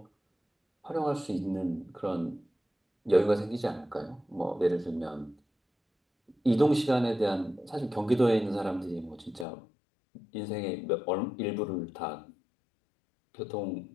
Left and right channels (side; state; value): right; drops out; at 9.5 s